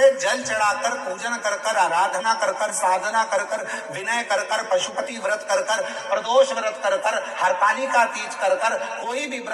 जल चढ़ाकर, पूजन कर कर, आराधना कर कर, साधना कर कर, विनय कर कर, पशुपति व्रत कर कर, प्रदोष व्रत कर कर, हरतालिका तीज कर कर, कोई भी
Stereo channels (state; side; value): identical; both; correlation 1.00